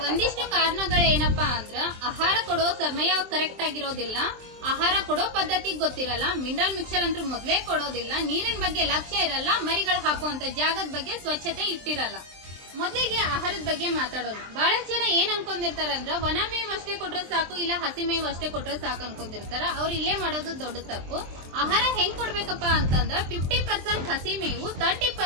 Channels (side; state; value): left; late; 23 ms